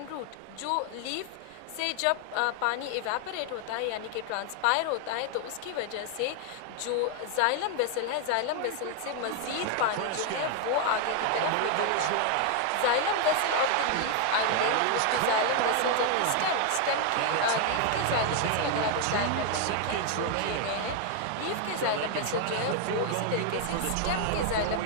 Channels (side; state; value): both; different; correlation 0.00